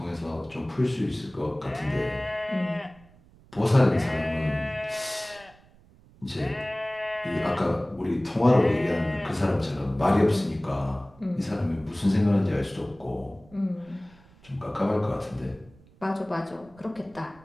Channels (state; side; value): noise; right; rumble, 26 dB below the sound